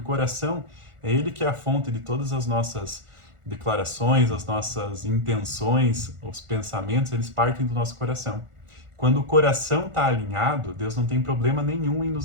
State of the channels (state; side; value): late; left; 1.4 ms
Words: coração é ele que é a fonte de todas as nossas declarações, as nossas intenções, os pensamentos, eles partem do nosso coração. Quando o coração está alinhado, Deus não tem problema nenhum em